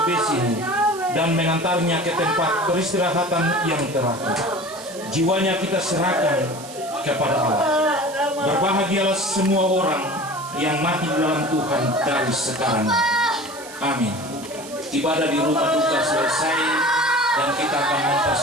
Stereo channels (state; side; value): noise; right; hiss, 16 dB below the sound